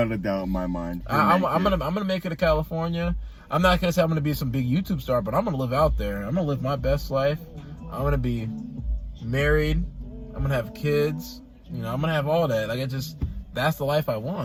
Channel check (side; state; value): both; identical; correlation 1.00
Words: a doubt in my mind. I'm gonna make it to California. I'm not gonna say I'm gonna be some big YouTube star, but I'm gonna live out there. I'm gonna live my best life. I'm gonna be married. I'm gonna have kids. You know, I'm gonna have all that. Like, that's the life I